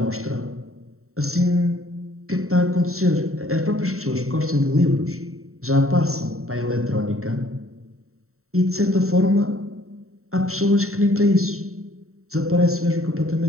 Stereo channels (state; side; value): late; left; 0.63 ms